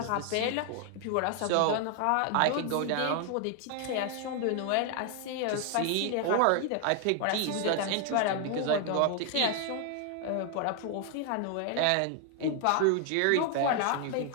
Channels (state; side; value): different; both; correlation 0.00